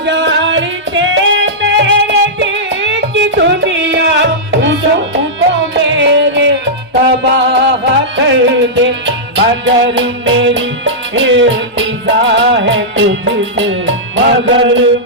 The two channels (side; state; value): both; normal; correlation -0.11